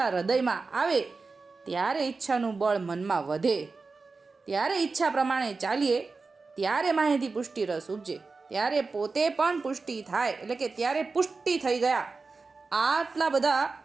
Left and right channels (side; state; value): left; quieter; 4.1 dB